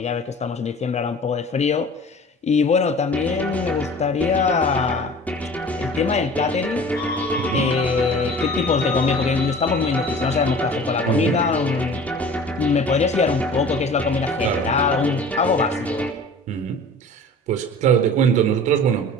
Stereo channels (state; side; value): normal; both; correlation 0.42